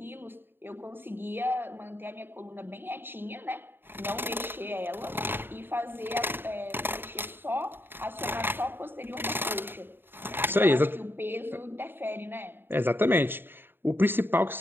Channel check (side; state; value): left; late; 0.10 ms